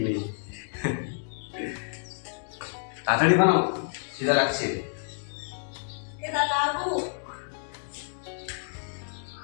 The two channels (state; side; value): silent; right; digital silence